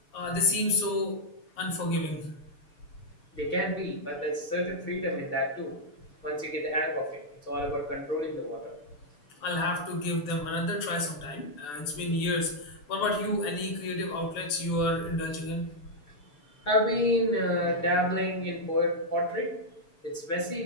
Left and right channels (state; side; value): late; right; 6.8 ms